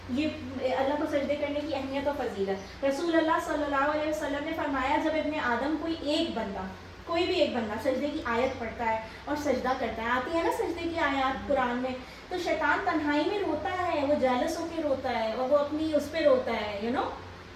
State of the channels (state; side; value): identical; both; correlation 1.00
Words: ये अल्लाह को सजदे करने की अहमियत और फजीलत, रसूल अल्लाह सल्लल्लाहु अलैहि वसल्लम ने फरमाया, जब इब्ने आदम कोई भी एक बंदा सजदे की आयत पढ़ता है और सजदा करता है, आती है ना सजदे की आयत कुरान में, तो शैतान तन्हाई में रोता है, वो जेलस होकर रोता है, और वो अपनी उस पर रोता है, यू नो,